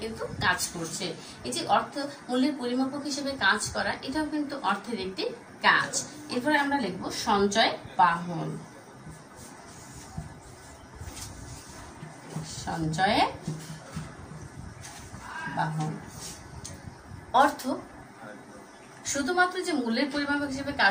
কিন্তু কাজ করছে। এই যে অর্থ মূল্যের পরিমাপক হিসেবে কাজ করা, এটাও কিন্তু অর্থের একটি কাজ। এরপরে আমরা লিখবো সঞ্চয় বাহন। সঞ্চয় বাহন। অর্থ শুধুমাত্র যে মূল্যের পরিমাপক হিসেবে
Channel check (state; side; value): identical; both; correlation 1.00